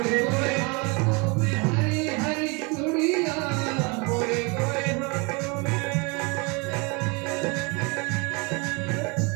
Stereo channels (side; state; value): left; quieter; 29.7 dB